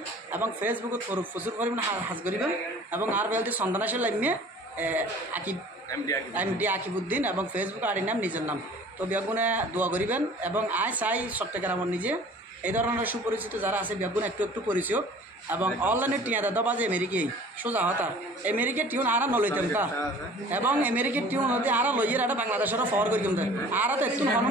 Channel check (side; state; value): both; normal; correlation 0.47